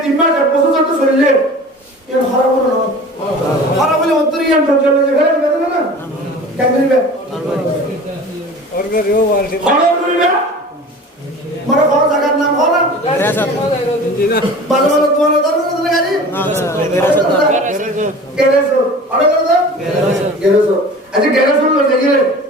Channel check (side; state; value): both; normal; correlation 0.40